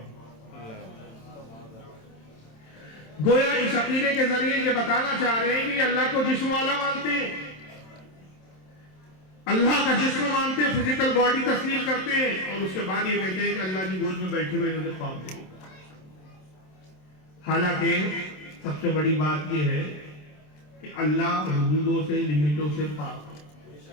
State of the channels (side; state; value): right; late; 27 ms